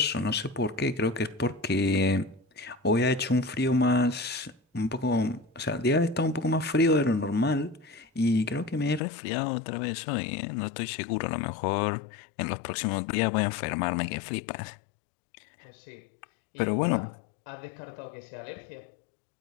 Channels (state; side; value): drops out; right; at 9.0 s